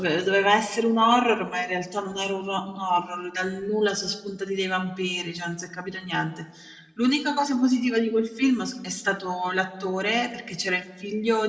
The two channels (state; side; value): identical; both; correlation 1.00